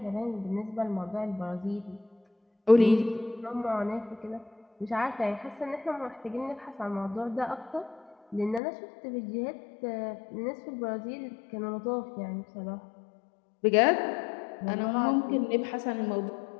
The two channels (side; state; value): right; drops out; at 8.6 s